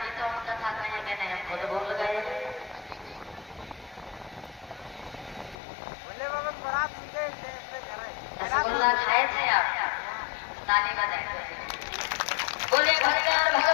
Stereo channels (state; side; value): drops out; right; at 5.6 s